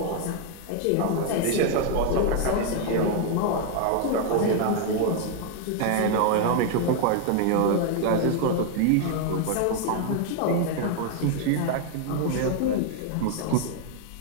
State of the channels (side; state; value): both; different; correlation 0.00